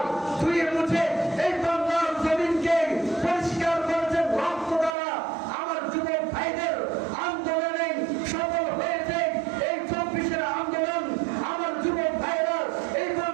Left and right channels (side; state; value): left; drops out; at 5.0 s